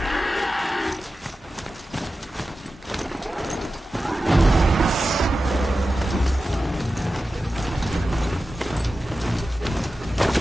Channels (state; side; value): normal; both; correlation 0.93